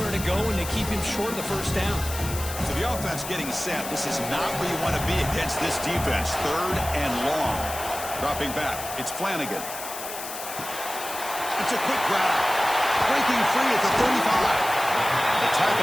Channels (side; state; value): left; noise; hiss, 9 dB below the sound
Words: to go, and to keep him short of the first down. So the offense getting set. This is not where you want to be against this defense. Third and long. Dropping back. It's Flanagan. It's a quick grab. Breaking free at the 35. They